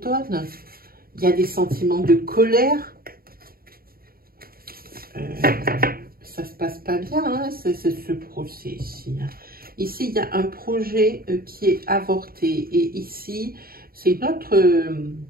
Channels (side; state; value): left; late; 0.43 ms